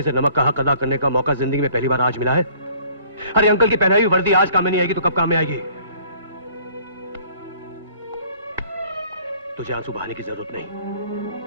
से नमक का हक अदा करने का मौका जिंदगी में पहली बार आज मिला है। अरे अंकल की पहनाई हुई वर्दी आज काम में नहीं आएगी तो कब काम में आएगी? तुझे आंसू बहाने की जरूरत नहीं,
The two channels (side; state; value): both; inverted; correlation -0.56